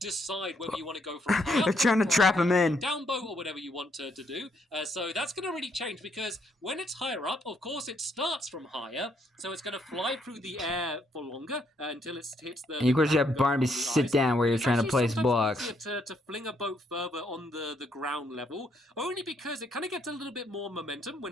whether you want to go for a They're trying to trap him in. Down boat or whatever you want to do. So that's going to really change, because when it's higher up, of course, it starts from higher. So it's going to fly through the air for longer until it hits the... And of course you have Barnaby sit down where you're trying to place blocks. To fling a boat further on the ground level, only because it kind of gets a little bit more momentum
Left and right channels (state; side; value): normal; both; correlation 0.73